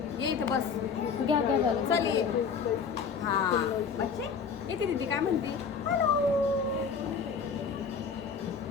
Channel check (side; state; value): right; quieter; 5.9 dB